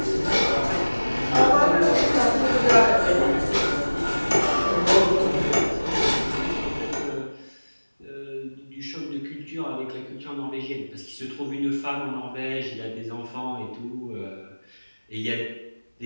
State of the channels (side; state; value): both; inverted; correlation -1.00